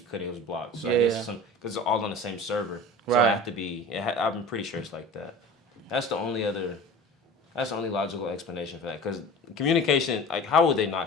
It was blocked. So I Yeah. guess because it's all on the same server, so Right. I have to be. I'm pretty sure it's like that. That's the only other. That's the only logical explanation for that. Because communication, like, how would they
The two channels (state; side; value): normal; both; correlation 0.38